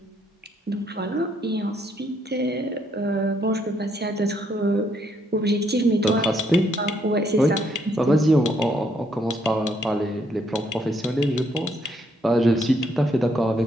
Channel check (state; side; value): normal; both; correlation 0.72